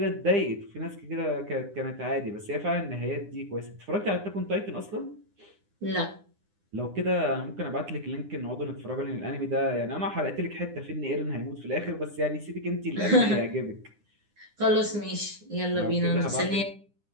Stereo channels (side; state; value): left; late; 9.9 ms